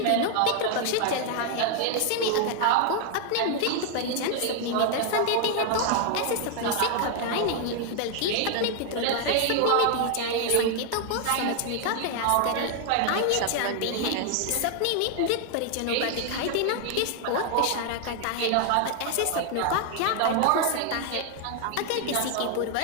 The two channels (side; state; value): both; different; correlation 0.00